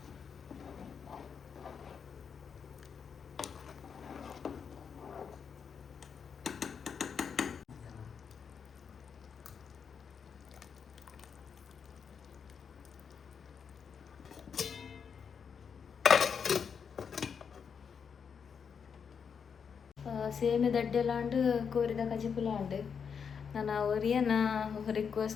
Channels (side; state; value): right; quieter; 6.6 dB